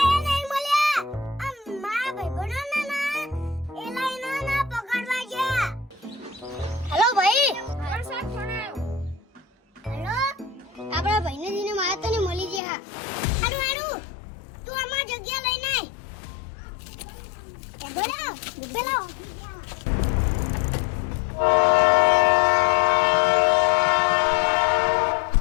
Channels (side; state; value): right; drops out; at 12.6 s